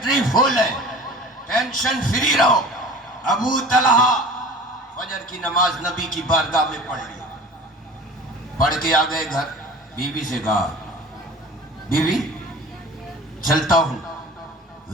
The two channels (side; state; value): both; normal; correlation 0.41